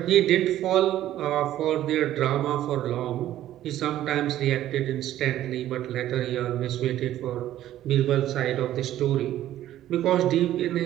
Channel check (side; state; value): left; quieter; 13.0 dB